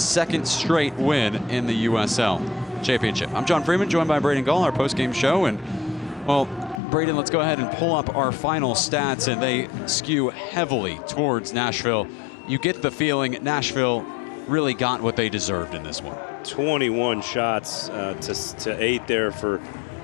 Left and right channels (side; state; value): right; drops out; at 6.8 s